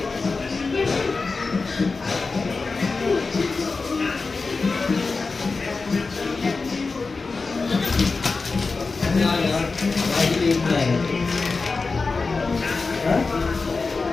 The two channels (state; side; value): quieter; right; 4.1 dB